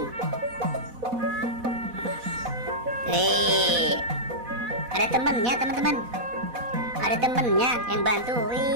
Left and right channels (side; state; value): left; late; 4.1 ms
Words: Ada temennya teman-teman. Ada temennya yang